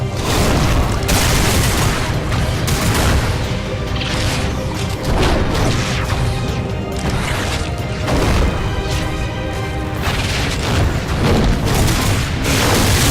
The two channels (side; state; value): both; identical; correlation 1.00